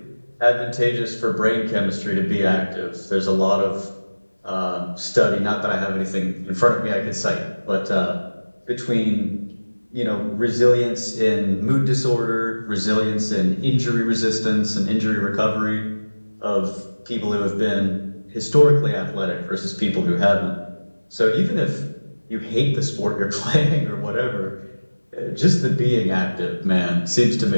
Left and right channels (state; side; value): inverted; both; correlation -1.00